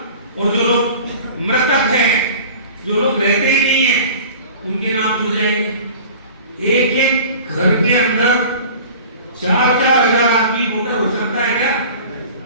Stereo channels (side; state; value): both; inverted; correlation -0.42